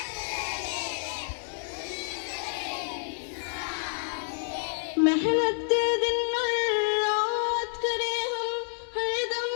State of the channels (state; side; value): silent; right; digital silence